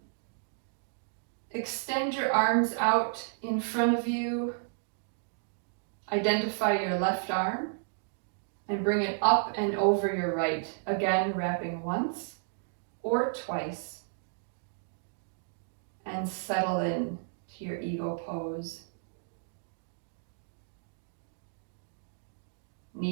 Extend your arms out in front of you. Identify your left arm and bring it up and over your right. Again, wrapping once or twice. And settle in to your eagle pose.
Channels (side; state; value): left; silent; digital silence